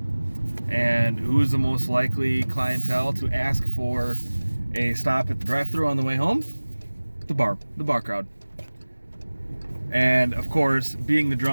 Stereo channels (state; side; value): inverted; both; correlation -1.00